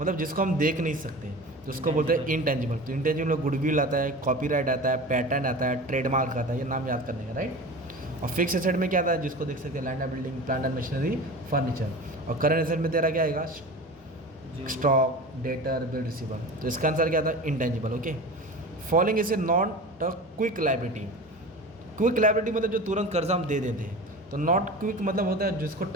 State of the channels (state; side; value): normal; both; correlation 0.33